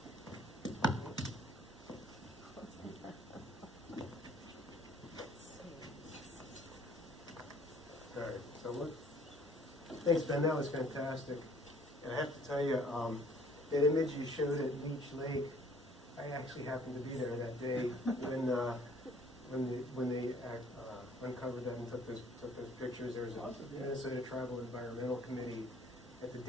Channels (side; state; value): both; normal; correlation 0.57